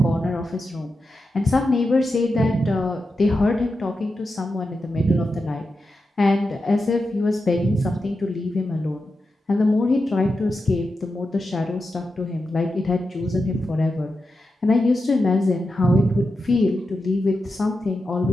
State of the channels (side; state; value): both; normal; correlation 0.89